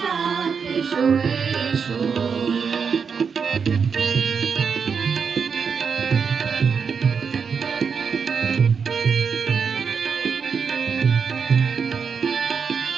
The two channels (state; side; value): quieter; left; 6.1 dB